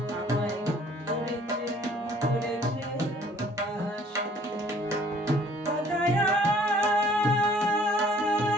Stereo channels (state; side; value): normal; both; correlation 0.57